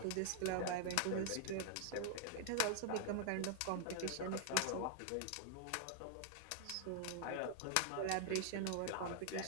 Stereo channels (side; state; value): both; different; correlation -0.01